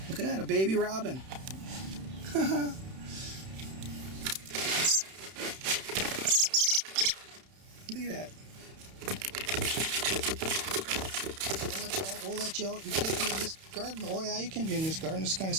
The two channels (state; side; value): late; left; 31 ms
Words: Look at that, a baby robin. Look at that. We'll let you out. You can't be in this garden. Oh yeah, you can be in this garden. It's kind of